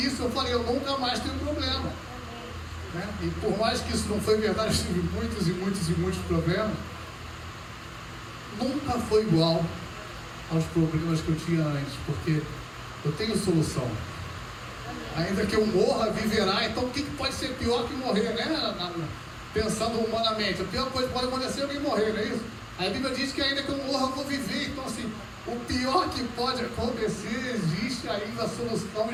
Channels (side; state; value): both; identical; correlation 1.00